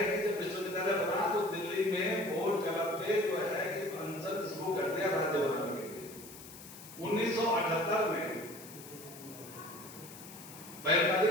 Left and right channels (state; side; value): noise; left; hiss, 16 dB below the sound